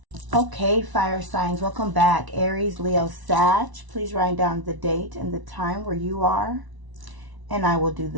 Okay, fire signs, welcome back. Aries, Leo, Sag. Please write down the date and the time where you are, and I will do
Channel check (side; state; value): left; late; 1.0 ms